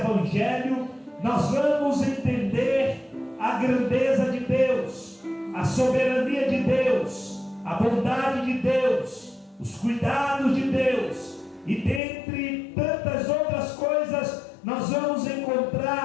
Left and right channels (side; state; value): right; drops out; at 12.0 s